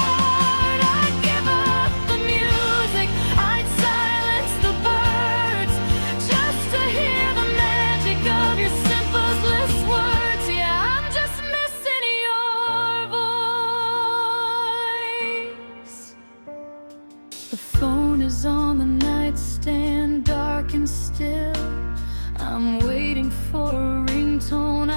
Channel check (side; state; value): both; inverted; correlation -1.00